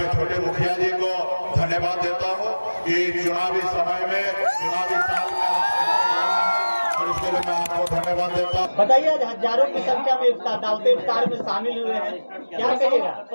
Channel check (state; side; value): inverted; both; correlation -1.00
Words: छोटे मुखिया जी को धन्यवाद देता हूँ कि चुनावी समय में, चुनावी साल में और इसके लिए मैं आपको धन्यवाद देता हूँ। बताइए, आज हजारों की संख्या में दावत इफ्तार में शामिल हुए हैं, क्या कहिएगा?